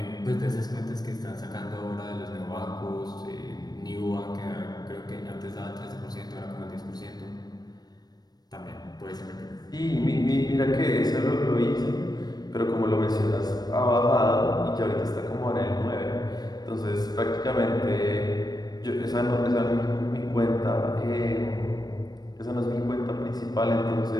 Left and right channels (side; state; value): right; late; 0.19 ms